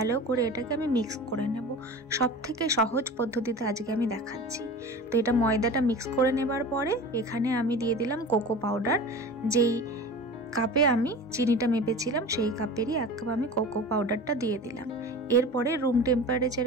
করে এটাকে আমি মিক্স করে নেব। সব থেকে সহজ পদ্ধতিতে আজকে আমি দেখাচ্ছি। তো এটা ময়দাটা মিক্স করে নেবার পরে এখানে আমি দিয়ে দিলাম কোকো পাউডার। যেই কাপে আমি চিনিটা মেপেছিলাম সেই কাপেরই 1 কাপ আমি কোকো পাউডারটা দিয়ে দিলাম। এরপরে রুম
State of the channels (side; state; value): both; normal; correlation 0.34